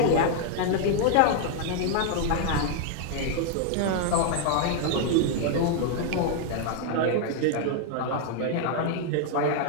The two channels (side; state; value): both; different; correlation 0.00